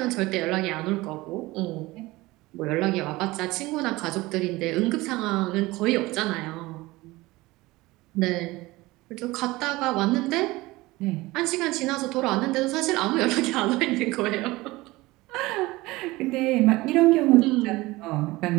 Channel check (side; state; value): left; quieter; 20.2 dB